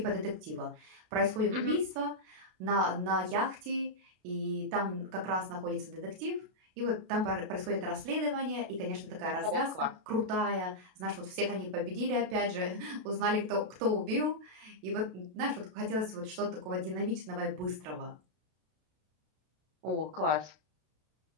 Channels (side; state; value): left; late; 32 ms